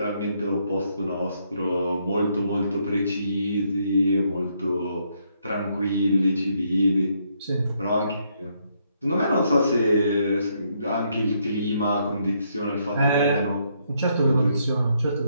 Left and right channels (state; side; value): inverted; both; correlation -0.74